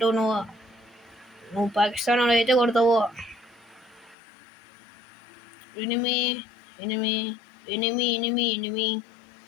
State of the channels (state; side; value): drops out; right; at 4.2 s